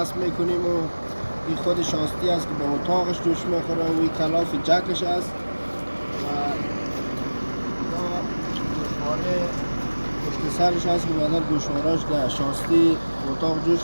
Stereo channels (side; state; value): both; inverted; correlation -1.00